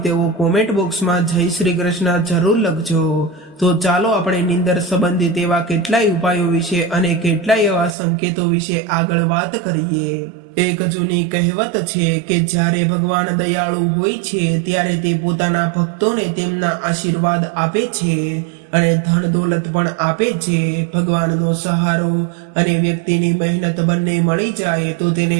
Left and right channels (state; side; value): drops out; left; at 8.0 s